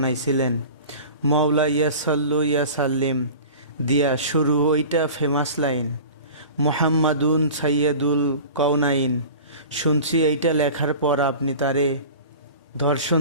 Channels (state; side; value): inverted; both; correlation -0.38